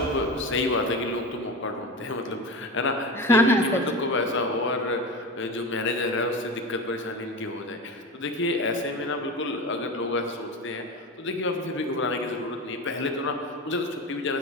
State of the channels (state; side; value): normal; both; correlation 0.25